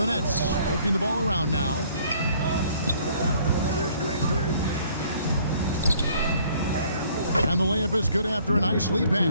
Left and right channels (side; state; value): both; inverted; correlation -0.60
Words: Nets working the ball around now. And the layup is good after a nice lead